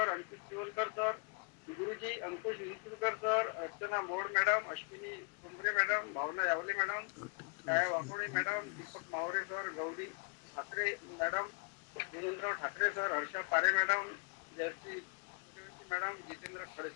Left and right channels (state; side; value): quieter; right; 32.9 dB